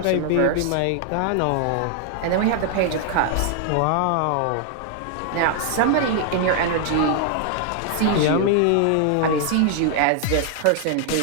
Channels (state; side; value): different; both; correlation 0.00